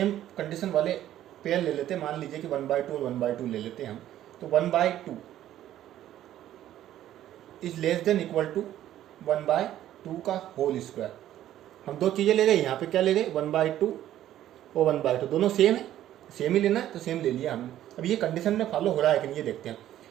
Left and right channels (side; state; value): left; quieter; 12.5 dB